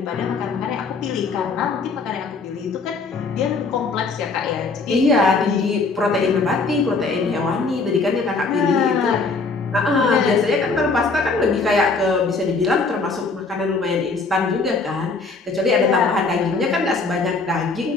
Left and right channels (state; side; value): quieter; right; 4.1 dB